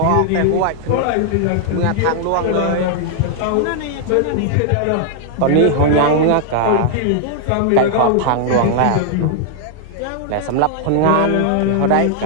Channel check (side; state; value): both; different; correlation 0.00